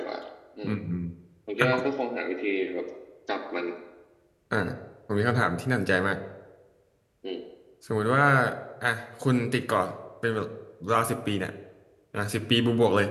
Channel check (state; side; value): identical; both; correlation 1.00